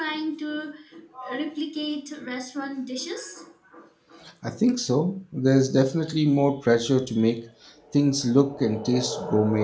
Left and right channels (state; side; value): identical; both; correlation 1.00